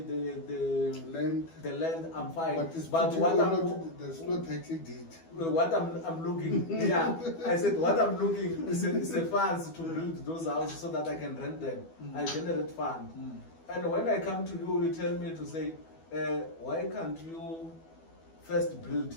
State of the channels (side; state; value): right; late; 12 ms